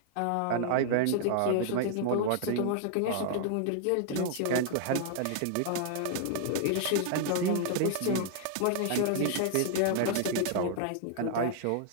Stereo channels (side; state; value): both; different; correlation 0.00